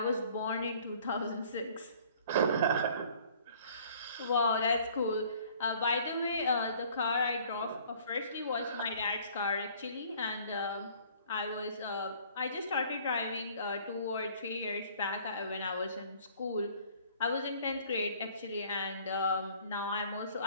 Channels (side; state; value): both; inverted; correlation -0.54